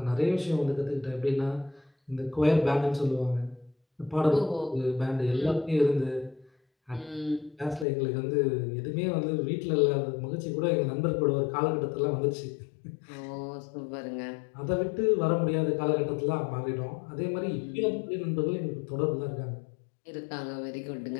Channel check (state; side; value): drops out; right; at 7.9 s